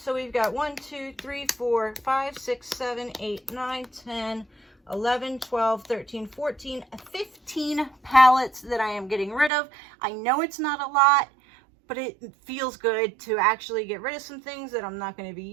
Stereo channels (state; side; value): drops out; left; at 9.5 s